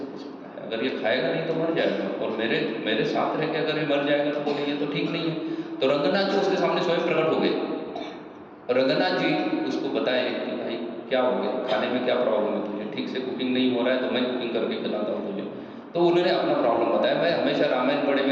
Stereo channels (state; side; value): identical; both; correlation 1.00